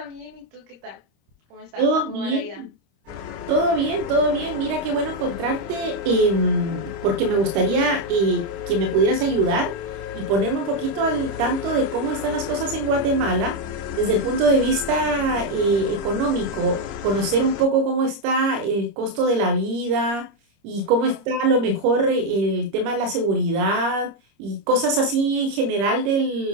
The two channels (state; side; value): late; left; 25 ms